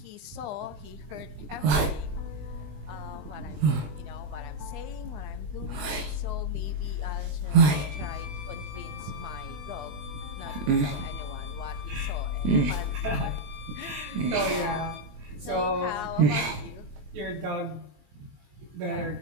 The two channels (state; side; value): late; left; 21 ms